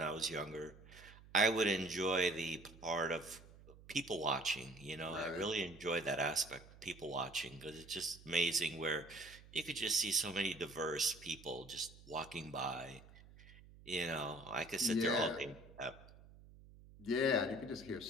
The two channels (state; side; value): noise; right; hum, 20 dB below the sound